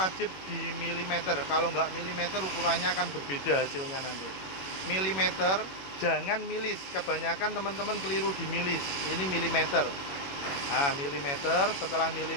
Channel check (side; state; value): right; late; 21 ms